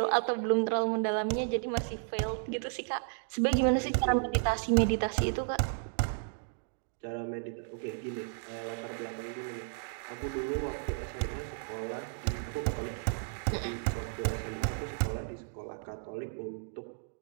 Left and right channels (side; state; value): left; silent; digital silence